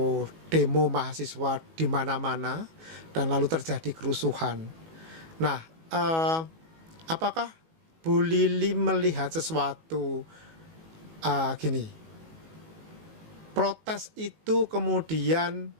demo mahasiswa di mana-mana dan lalu terjadi kerusuhan. Nah, apakah Bu Lili melihat sesuatu gini, protes itu kemudian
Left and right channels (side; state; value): left; late; 18 ms